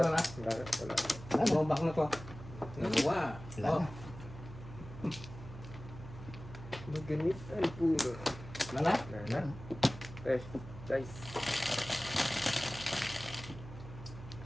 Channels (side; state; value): right; noise; hum, 13 dB below the sound